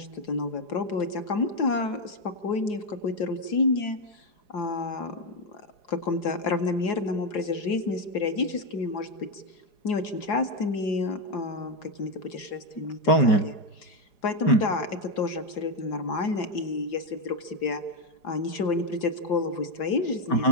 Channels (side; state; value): right; late; 4.8 ms